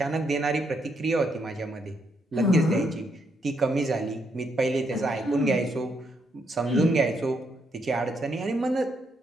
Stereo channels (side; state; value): both; normal; correlation 0.76